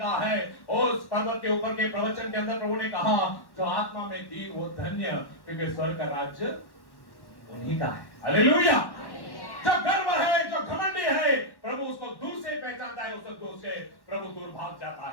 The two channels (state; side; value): late; right; 1.1 ms